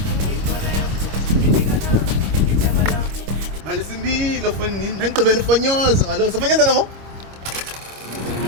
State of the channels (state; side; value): late; left; 25 ms